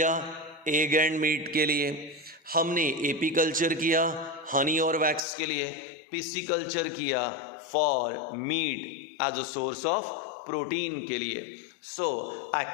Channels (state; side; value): drops out; right; at 5.2 s